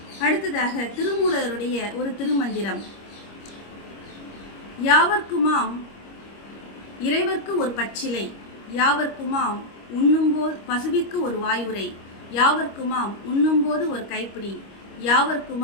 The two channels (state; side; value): late; right; 25 ms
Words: அடுத்ததாக திருமூலருடைய ஒரு திருமந்திரம். யாவர்க்குமாம் இறைவர்க்கு ஒரு பச்சிலை, யாவர்க்குமாம் உண்ணும்போது பசுவிற்கு ஒரு வாயுரை, யாவர்க்குமாம் உண்ணும்போது ஒரு கைப்பிடி,